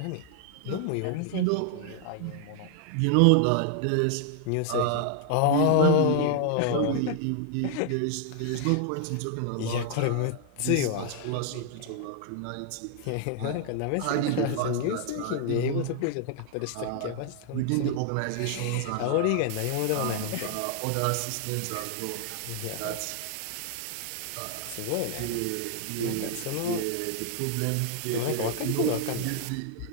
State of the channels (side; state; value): both; different; correlation 0.00